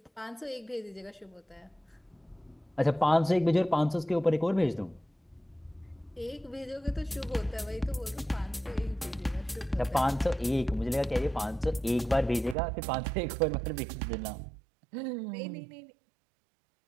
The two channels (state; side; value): drops out; left; at 12.6 s